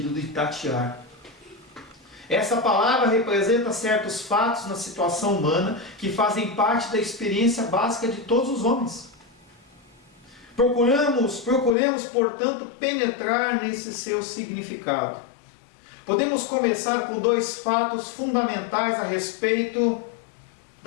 de tatear. Essa palavra representa certos fatos na situação humana que fazem parte da experiência básica de todos os homens. Procuremos, portanto, penetrar nesse seu significado. Podemos começar com 2 fatos fundamentais a respeito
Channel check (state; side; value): drops out; right; at 11.8 s